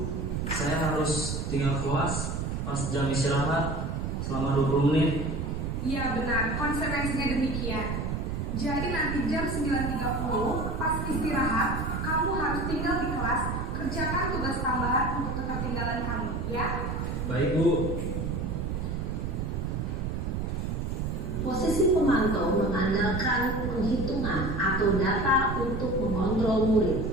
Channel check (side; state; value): right; noise; rumble, 2 dB below the sound